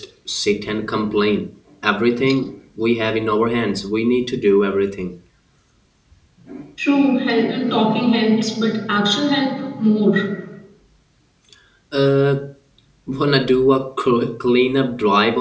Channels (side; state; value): both; identical; correlation 1.00